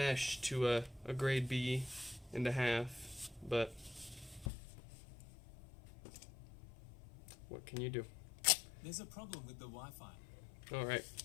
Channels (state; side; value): drops out; right; at 4.5 s